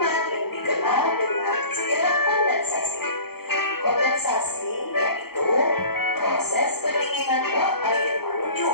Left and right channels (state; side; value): late; right; 0.96 ms